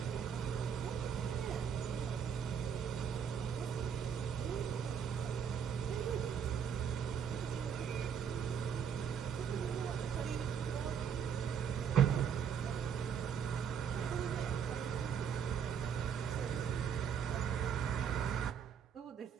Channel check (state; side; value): quieter; left; 7.5 dB